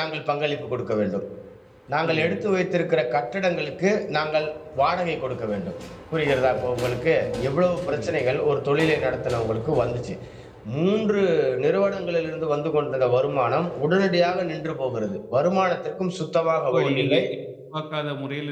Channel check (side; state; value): both; identical; correlation 1.00